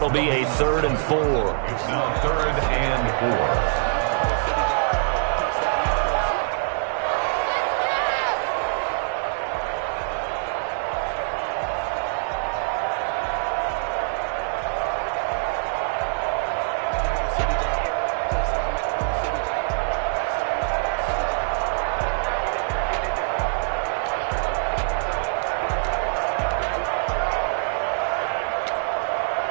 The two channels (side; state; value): left; silent; digital silence